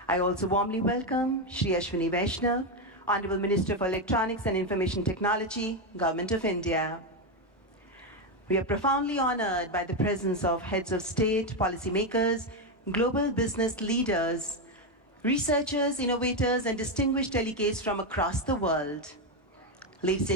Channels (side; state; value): both; normal; correlation 0.08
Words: I also warmly welcome Shri Ashwini Vaishnav, Honorable Minister for Electronics and Information Technology, Government of India. We are profoundly honored by the presence of heads of state, policymakers, global business leaders, researchers, innovators, and distinguished delegates from across the world. Ladies